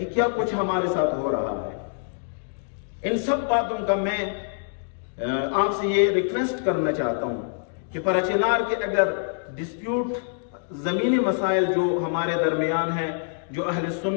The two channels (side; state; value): right; silent; digital silence